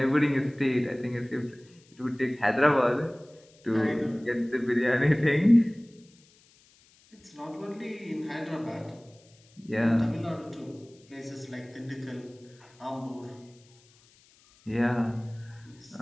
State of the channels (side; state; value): left; noise; hiss, 29 dB below the sound